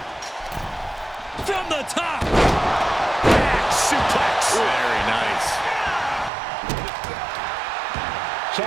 From the top. Back suplex. Very nice.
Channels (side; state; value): left; drops out; at 6.3 s